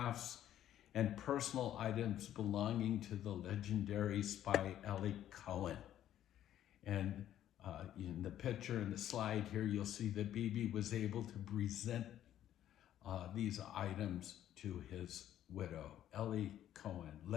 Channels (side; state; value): right; quieter; 11.6 dB